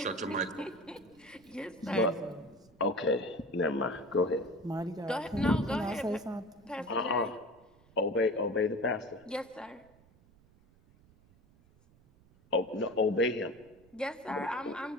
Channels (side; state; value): right; noise; rumble, 28 dB below the sound